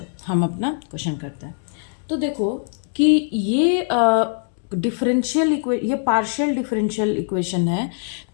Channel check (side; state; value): right; silent; digital silence